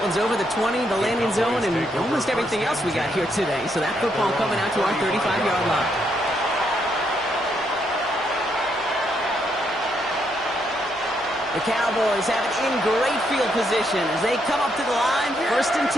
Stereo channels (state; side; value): noise; left; hum, 28 dB below the sound